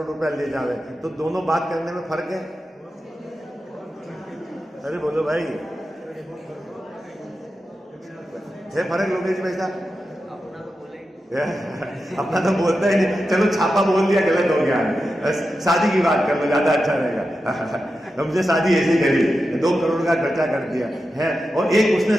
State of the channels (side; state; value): both; normal; correlation 0.90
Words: रुपया ले जावे, तो दोनों बात करने में फर्क है? अरे बोलो भाई, है फर्क लोकेश भाई साहब? अपना तो बोलता ही नहीं। चलो छापा बोल दिया, गलत हो गया। शादी की बात कर लो, ज्यादा अच्छा रहेगा। हमसे शादी ऐसी करी, 2 करोड़ का खर्चा कर दिया है, और एक उसने